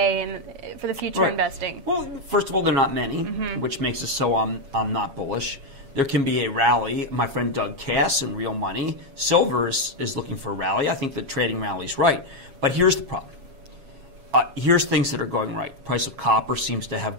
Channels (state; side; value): late; left; 7.3 ms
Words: and for the future investing. Well, first of all, they're not many, which makes it so I'm not bullish. There can be a rally. My friend Doug Cass in Real Money, silver is looking for a rally. I think the trading rally is right. But here's the problem. Here's things that are going right. Price of copper seems to